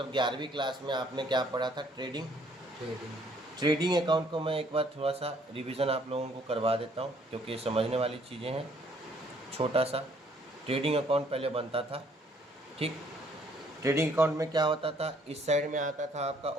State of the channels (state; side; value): normal; both; correlation 0.63